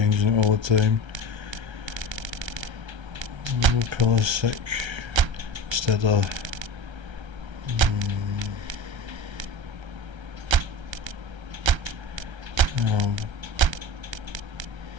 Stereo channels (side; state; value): left; late; 1.3 ms